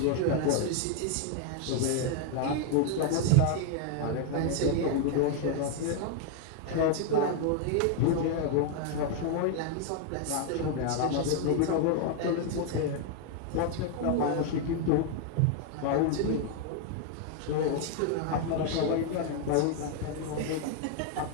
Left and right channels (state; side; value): different; both; correlation 0.00